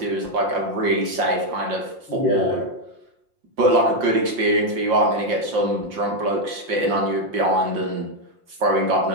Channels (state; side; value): late; left; 5.7 ms